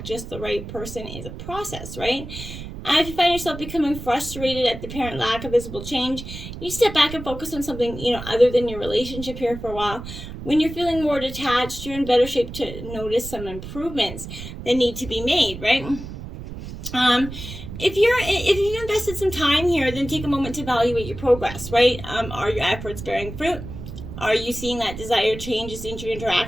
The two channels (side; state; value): right; noise; rumble, 10 dB below the sound